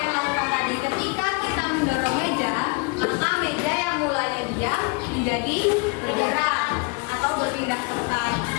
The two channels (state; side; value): quieter; right; 30.7 dB